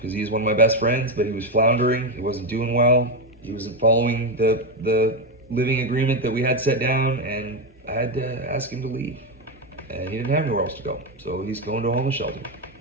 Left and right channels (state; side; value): normal; both; correlation 0.08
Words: he's one of my best friends, but he was floundering. He wasn't doing well. He wasn't following the living agreement that we had set down, and I had to ask him to leave. And he didn't have anywhere else to go, so he's going to a homeless shelter.